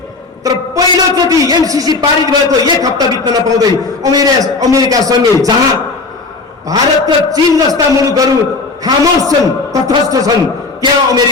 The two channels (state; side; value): quieter; right; 3.8 dB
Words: तर पहिलोचोटि एमसीसी पारित भएको 1 हप्ता बित्न नपाउँदै अमेरिकासँगै, जहाँ भारत र चीन जस्ता मुलुकहरू खामोश छन्, तटस्थ छन्,